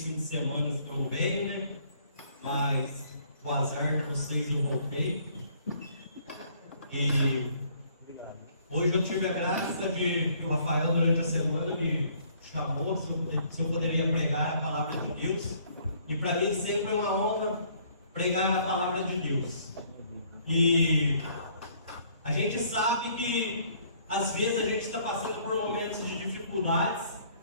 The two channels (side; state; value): both; inverted; correlation -0.62